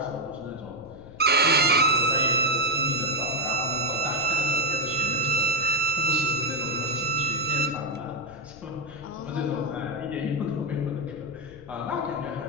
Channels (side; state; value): left; noise; rumble, 19 dB below the sound